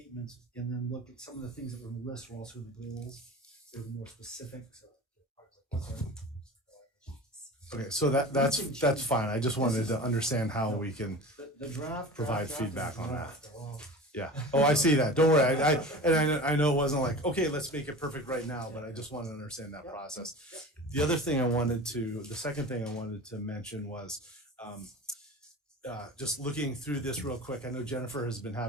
and then look at some of the things that were in the list were also in the goals. They were more specific. So Okay, so that's fine. I just wanted to understand how we can the draft provide draft feedback is on that. draft. Well, Yeah. Oh, I see that. Don't worry. I know it wasn't like, okay, let's make it perfect right now, but I just wanted to understand that process. The second thing I wanted to mention was, just looking through this real quick. I know Jennifer has been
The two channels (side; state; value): both; normal; correlation 0.34